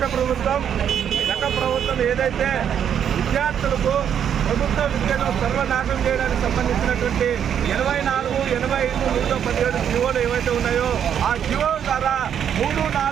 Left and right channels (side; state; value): left; quieter; 8.8 dB